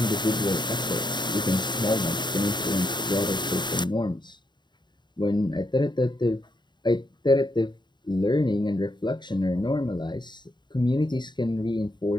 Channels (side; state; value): right; late; 0.22 ms